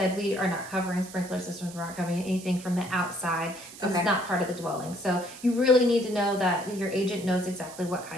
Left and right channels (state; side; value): noise; right; hiss, 16 dB below the sound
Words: we are not covering sprinkler systems. We're not covering anything from the outside. So it's not part of the dwelling. So you really need to know that your agent knows exactly what